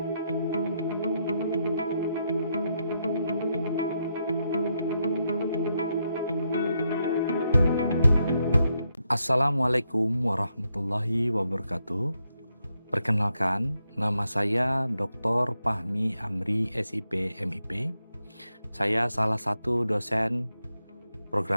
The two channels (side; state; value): both; inverted; correlation -0.81